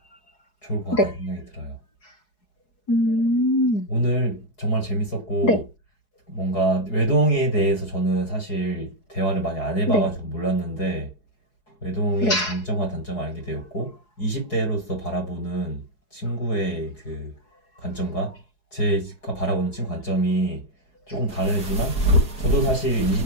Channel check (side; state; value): right; late; 4.7 ms